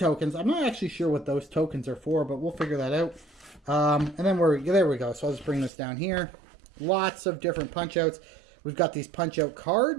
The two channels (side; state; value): left; drops out; at 5.7 s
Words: I'm not actually sure what those tokens are for, but we'll figure that out. And then there we go. So I'll just bring this down here. Lots of different punch outs. We've got these punch-out